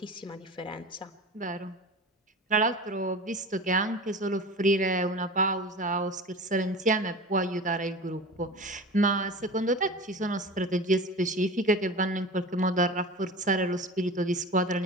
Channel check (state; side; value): normal; both; correlation 0.34